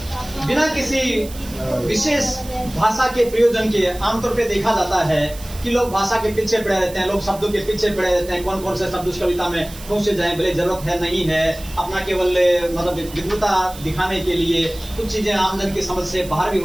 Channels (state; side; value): noise; right; hiss, 17 dB below the sound